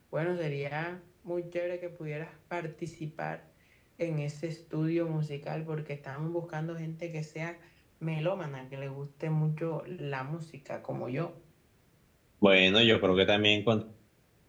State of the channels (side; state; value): both; identical; correlation 1.00